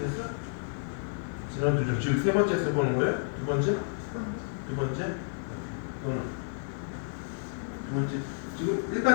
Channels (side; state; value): right; silent; 57 dB below the other